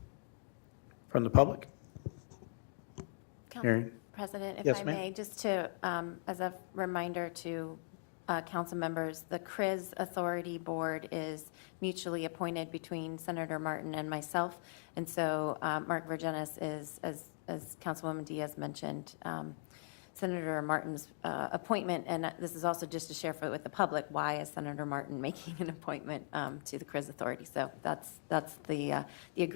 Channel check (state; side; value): silent; right; digital silence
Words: from the public? Hearing. President, if Yes, I ma'am. may, just to, as a reminder to council members, the CRIS Authority Board is mutually appointed between Senator Martin and myself. And so Mark Vergenis is, as Councilwoman Diaz mentioned, Senator Martin's appointment. And this is also just to share with the public, why is Senator Martin making an appointment to the CRIS Authority? So that's the